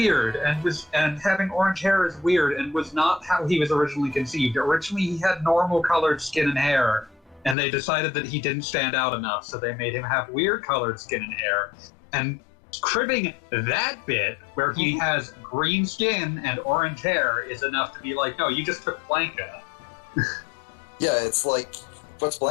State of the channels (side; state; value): right; drops out; at 7.6 s